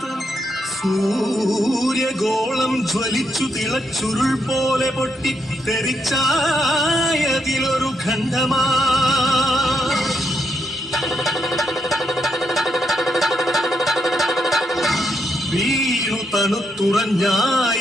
സൂര്യഗോളം ജ്വലിച്ചു തിളച്ചുരുൾ പോലെ പൊട്ടി തെറിച്ചായതിലൊരു ഖണ്ഡമാ. വീണു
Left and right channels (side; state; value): both; normal; correlation 0.79